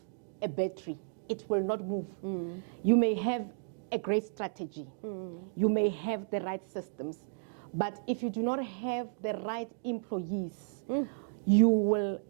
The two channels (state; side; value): silent; left; digital silence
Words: a battery, it will not move. You may have a great strategy, you may have the right systems, but if you do not have the right employees, you will